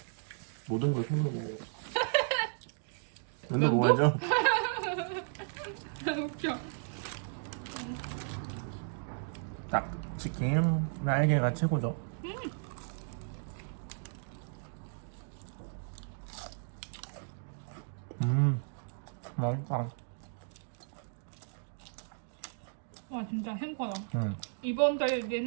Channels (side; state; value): left; silent; digital silence